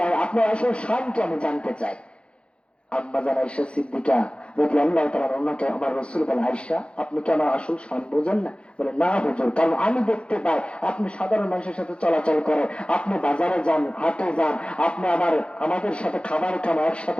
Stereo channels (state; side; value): late; right; 0.057 ms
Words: আপনার আসল শান কি আমি জানতে চাই। আম্মাজান আয়েশা সিদ্দিকা যদি আল্লাহ তাআলা ওনাকে আমার রাসূল বলে, আয়েশা আপনি কি আমার আসল শান বোঝেন না? বলে, না হুজুর, কারণ আমি দেখতে পাই আপনি সাধারণ মানুষের সাথে চলাচল করেন, আপনি বাজারে যান, হাটে যান, আপনি আমাদের সাথে খাবার খান,